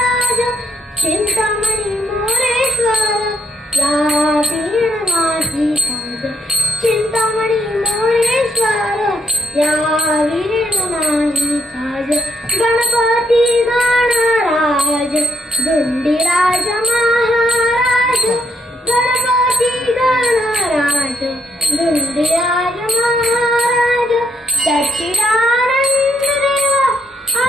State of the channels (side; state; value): both; normal; correlation 0.76